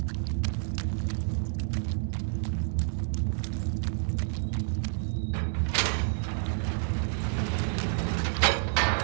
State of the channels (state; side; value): silent; left; digital silence